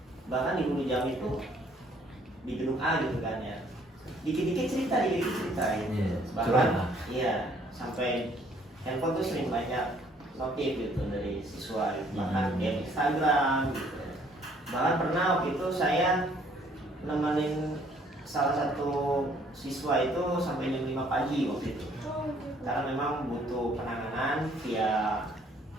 Bahkan di guru jam itu di gedung A gitu kan ya, dikit-dikit cerita gitu. Bahkan iya sampai handphone tuh sering banyak notif gitu dari siswa gitu. Bahkan di Instagram gitu. Bahkan pernah waktu itu saya nemenin salah satu siswa itu sampai jam 5 pagi waktu itu, karena memang butuh penanganan via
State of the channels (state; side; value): normal; both; correlation 0.62